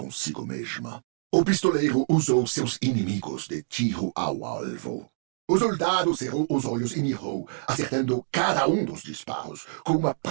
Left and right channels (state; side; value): silent; left; digital silence